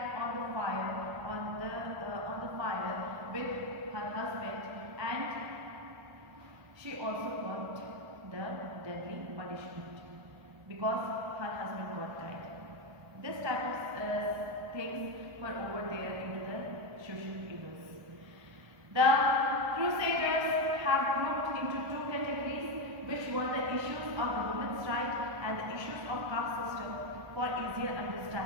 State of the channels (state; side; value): late; left; 1.2 ms